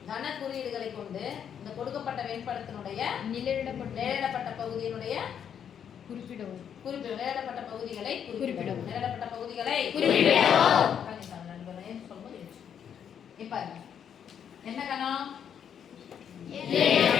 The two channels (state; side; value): quieter; right; 8.4 dB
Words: கன குறியீடுகளை கொண்டு இந்த கொடுக்கப்பட்ட வெண்படத்தினுடைய நிலையிடப்பட்ட பகுதியினுடைய குறிப்பிடவும். நிலையிடப்பட்ட பகுதிகளை குறிப்பிடவும். நிலையிடப்பட்ட பகுதிகளை குறிப்பிடவும். இப்ப என்ன கணம்?